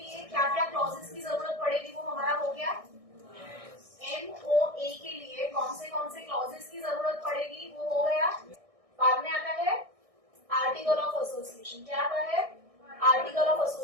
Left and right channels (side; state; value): left; late; 1.6 ms